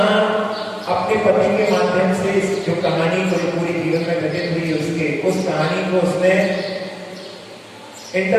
अपने पति के माध्यम से इस जो कहानी को पूरी जीवन में घटित हुई उसके उस कहानी को उसने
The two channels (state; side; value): identical; both; correlation 1.00